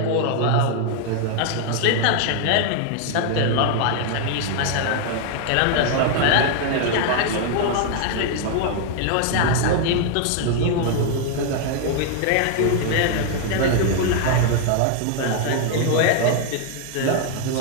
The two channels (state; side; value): different; both; correlation 0.00